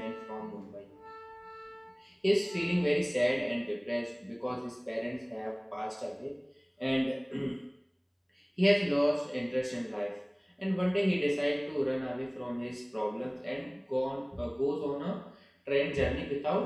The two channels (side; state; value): both; identical; correlation 1.00